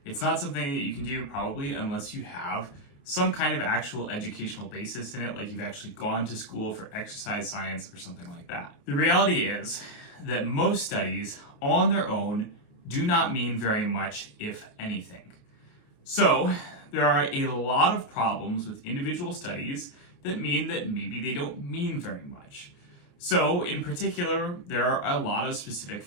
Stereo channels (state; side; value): late; right; 28 ms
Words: It's not something that you can do probably unless you have some kind of actual educational basis in it, like you've actually gone to school for exercise science or something like that. The reality is that most studies on their own do not mean very much, if anything. So there are a lot of problems with individual studies that mean that maybe they don't mean very much. So in particular, there are a lot of specific